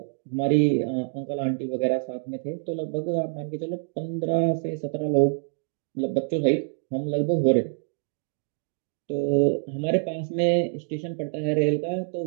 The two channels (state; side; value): silent; left; 60 dB below the other